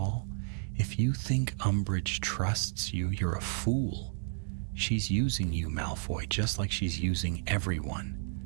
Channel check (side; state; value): left; silent; digital silence